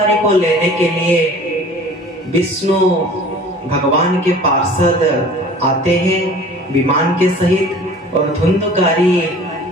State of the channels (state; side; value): normal; both; correlation 0.46